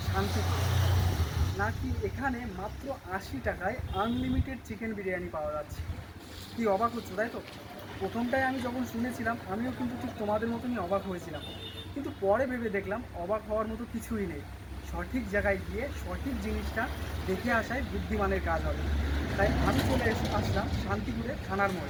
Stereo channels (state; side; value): identical; both; correlation 1.00